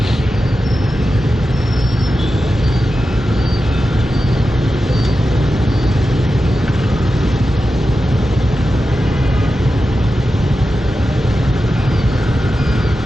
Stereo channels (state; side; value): normal; both; correlation 0.92